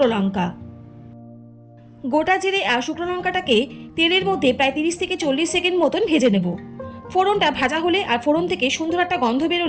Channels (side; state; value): both; identical; correlation 1.00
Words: লঙ্কা। গোটা জিরে আর শুকনো লঙ্কাটাকে তেলের মধ্যে প্রায় 30 থেকে 40 সেকেন্ড মতন ভেজে নেব। ফোড়নটা ভাজা হলে আর ফোড়ন থেকে সুন্দর একটা গন্ধ